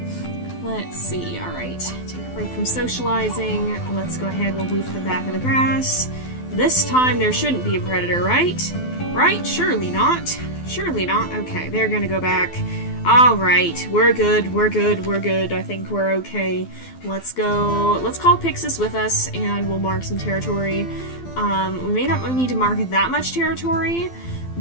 Let's see, alright. Take a break from socializing. Let's go ahead, we'll move to the back of the grass. This time there shouldn't be a predator, right? Right? Surely not. Surely not. Okay, they're gonna go back. Alright, we're good, we're good, we're good. I think we're okay. Let's go. Let's call Pyxis with us and we'll mark some territory. We may not need to mark that much territory,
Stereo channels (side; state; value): right; late; 12 ms